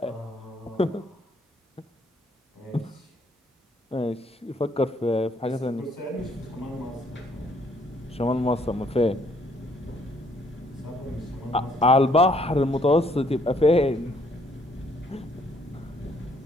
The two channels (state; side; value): normal; both; correlation 0.67